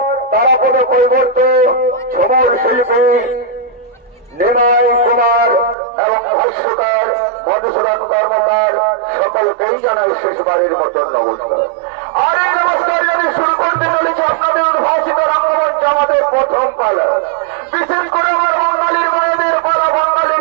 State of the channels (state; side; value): drops out; left; at 5.8 s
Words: তারাপদ কৈবর্ত ছবল শিল্পী নিমাই কুমার এবং ভাষ্যকার মধুসূদন কর্মকার সকলকেই জানাই শেষবারের মতন নমস্কার। আর এই নমস্কার যদি শুরু করতে চলেছে আপনাদের উদ্ভাসিত রঙ্গমঞ্চ আমাদের প্রথম পালা, বিশেষ করে আমার বাঙালির মায়েদের পালা,